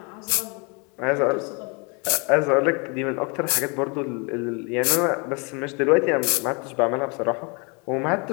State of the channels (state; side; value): quieter; right; 32.2 dB